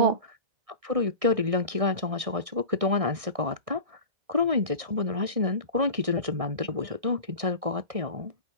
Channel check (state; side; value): late; left; 1.6 ms